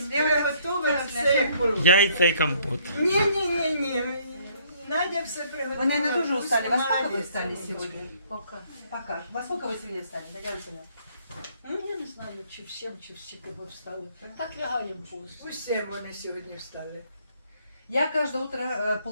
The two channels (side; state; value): both; inverted; correlation -0.63